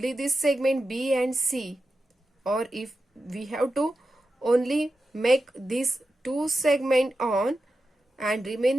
this segment B and C, or if we have to only make this 2 segment on and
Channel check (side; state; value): both; normal; correlation 0.90